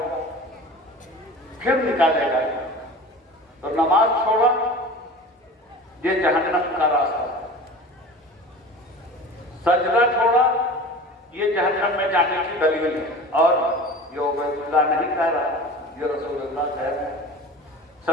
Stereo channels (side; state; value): both; normal; correlation 0.37